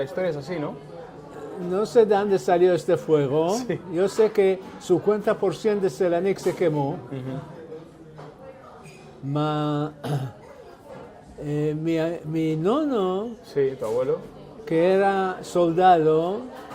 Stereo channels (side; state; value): both; identical; correlation 1.00